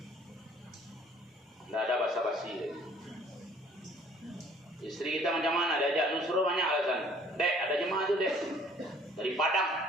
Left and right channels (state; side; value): normal; both; correlation 0.56